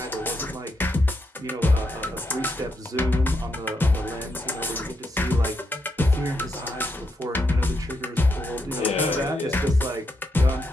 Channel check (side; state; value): both; normal; correlation 0.81